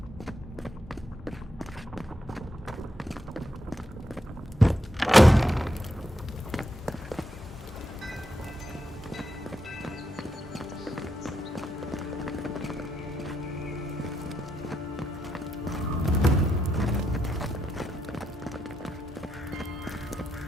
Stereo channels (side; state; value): both; normal; correlation 0.81